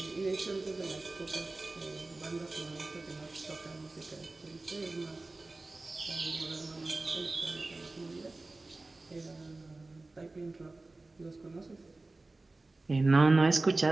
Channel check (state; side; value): quieter; left; 3.2 dB